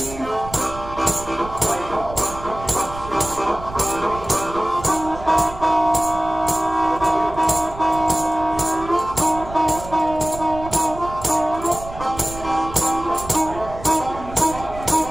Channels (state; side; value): noise; right; rumble, 13 dB below the sound